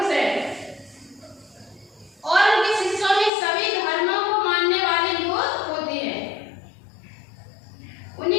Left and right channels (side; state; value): right; drops out; at 3.3 s